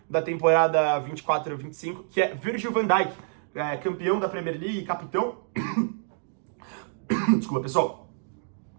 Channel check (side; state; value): left; silent; digital silence